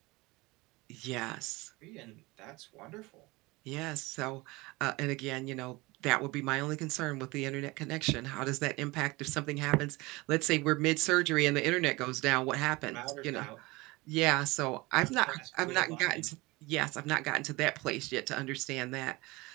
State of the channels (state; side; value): quieter; left; 22.8 dB